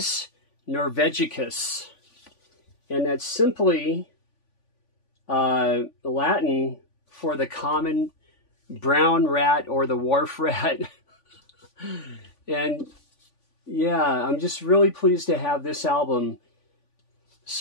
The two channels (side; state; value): right; late; 3.5 ms